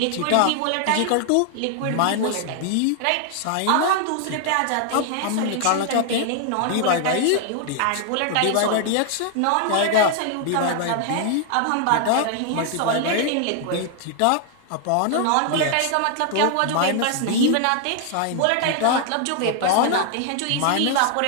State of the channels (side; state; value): both; different; correlation 0.00